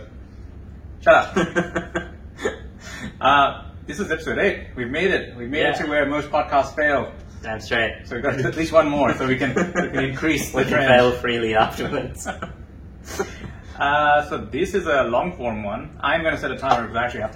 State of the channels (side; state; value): both; identical; correlation 1.00